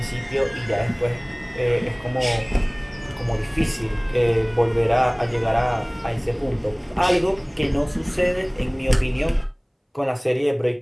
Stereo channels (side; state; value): both; identical; correlation 1.00